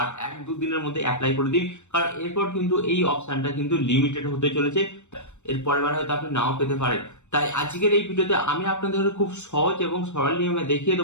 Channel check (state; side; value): late; right; 0.84 ms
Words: 1-2 দিনের মধ্যে অ্যাপ্লাই করে দিন, কারণ এরপর কিন্তু এই অপশনটা কিন্তু লিমিটেড হতে চলেছে। এর পরের বার হয়তো আপনি নাও পেতে পারেন। তাই আজকের এই ভিডিওতে আমি আপনাদের খুব সহজ এবং সরল নিয়মে দেখিয়ে